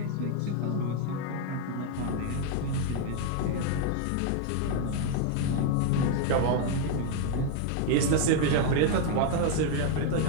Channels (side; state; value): both; different; correlation 0.00